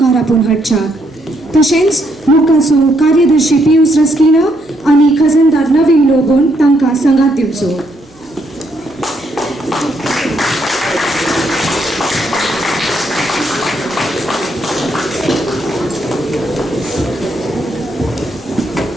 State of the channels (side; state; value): right; noise; hum, 30 dB below the sound